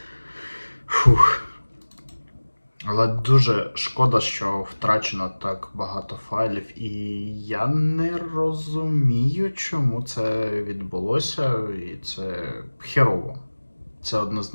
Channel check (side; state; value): both; inverted; correlation -1.00